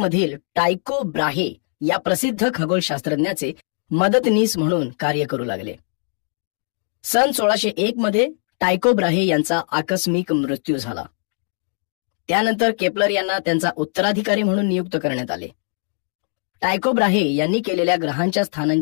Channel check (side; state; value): right; silent; 65 dB below the other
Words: टायको ब्राहे या प्रसिद्ध खगोलशास्त्रज्ञाचे मदतनीस म्हणून कार्य करू लागले. सन 1601 मध्ये टायको ब्राहे यांचा आकस्मिक मृत्यू झाला. त्यानंतर केपलर यांना त्यांचा उत्तराधिकारी म्हणून नियुक्त करण्यात आले. टायको ब्राहे यांनी केलेल्या ग्रहांच्या